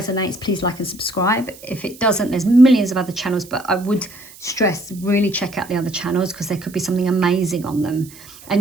please like and subscribe. If it doesn't, there's millions of other channels, but I would stress, really check out the other channels, because there could be something amazing on them.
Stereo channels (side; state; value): right; noise; hiss, 20 dB below the sound